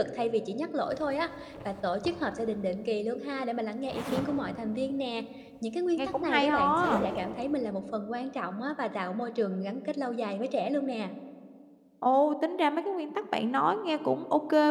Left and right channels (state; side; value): identical; both; correlation 1.00